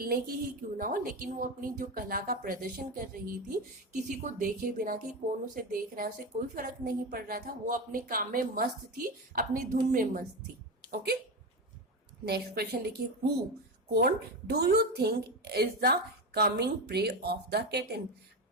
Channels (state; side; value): normal; both; correlation 0.18